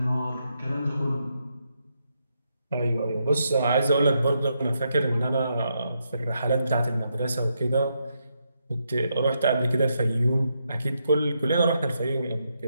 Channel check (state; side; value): inverted; both; correlation -0.81